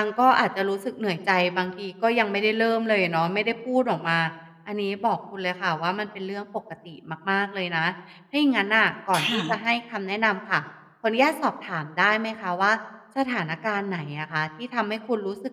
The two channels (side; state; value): both; identical; correlation 1.00